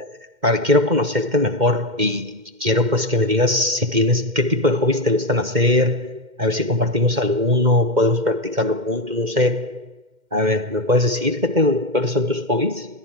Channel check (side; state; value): left; late; 2.1 ms